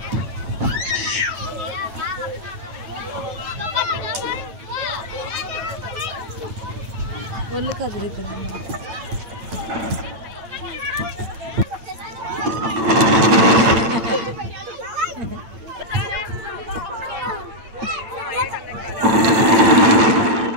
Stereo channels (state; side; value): late; left; 8.9 ms